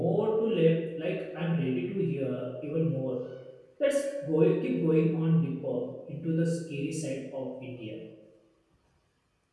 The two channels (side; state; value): both; identical; correlation 1.00